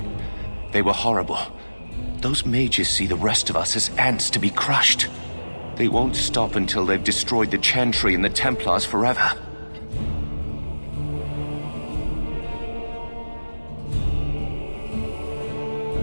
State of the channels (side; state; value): both; inverted; correlation -1.00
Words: were horrible. Those mages see the rest of us as ants to be crushed. They won't stop until they've destroyed the Chantry and the Templars forever.